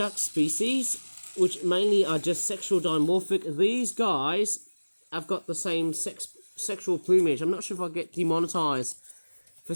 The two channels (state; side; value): inverted; both; correlation -1.00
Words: species, which mainly are just sexual dimorphic, these guys have got the same sexual plumage. I'm not sure if I'll get demonetized for